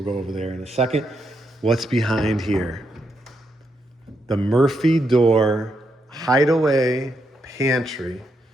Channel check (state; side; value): normal; both; correlation 0.80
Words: go over there in a second. What's behind here? The Murphy door hideaway pantry